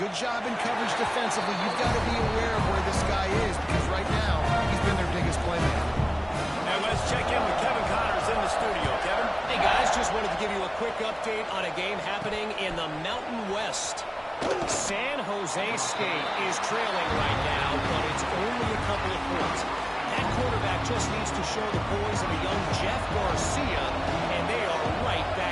job in coverage defensively. You've got to be aware of where this guy is because right now he's been their biggest playmaker. And let's check in with Kevin Connors in the studio. Kevin? Hey, guys, just wanted to give you a quick update on a game happening in the Mountain West. San Jose State is trailing right now, but it's only a couple of points. That quarterback just needs to show the boys of a young Jeff Garcia, and they are right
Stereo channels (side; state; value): both; identical; correlation 1.00